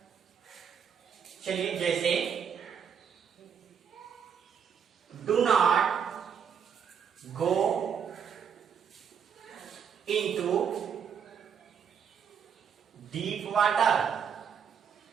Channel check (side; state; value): left; quieter; 7.3 dB